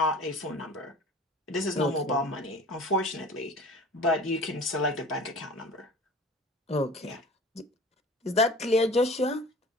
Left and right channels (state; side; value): normal; both; correlation 0.41